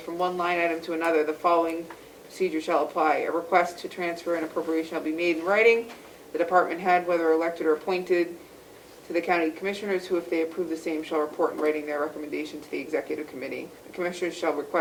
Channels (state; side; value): identical; both; correlation 1.00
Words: from one line item to another, the following procedure shall apply. A request to transfer an appropriation shall be made in writing. The department head, whether elected or appointed, to the county commissioners, who, if they approve the same, shall report in writing their recommendation to the executive committee. The commissioners shall